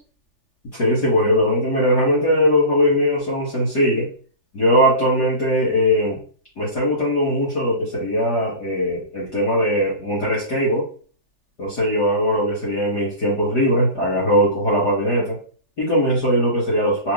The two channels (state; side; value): late; right; 3.4 ms